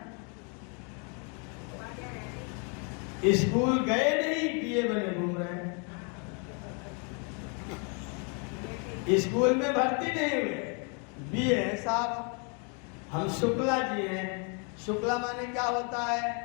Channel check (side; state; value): right; quieter; 37.0 dB